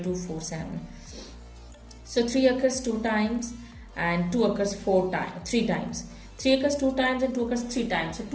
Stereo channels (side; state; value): both; identical; correlation 1.00